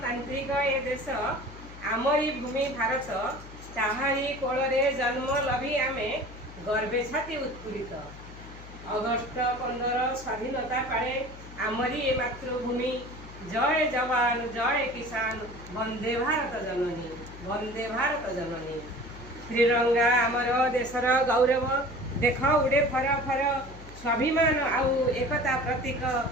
ए देश आमरी भूमि भारत, ताहारी कोଳରେ जन्म लभी आमे गर्वे छाती उत्फुल्लित। अगस्ट 15 स्वाधीनता पाए आमरी ए मातृभूमि। जय जवान जय किसान, वंदे भारत जननी, वंदे भारत जननी। त्रिरंगा आमर देशर गौरव, देख उड़े फर फर, स्वाभिमान आउ एकता प्रतीक,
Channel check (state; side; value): noise; left; hum, 16 dB below the sound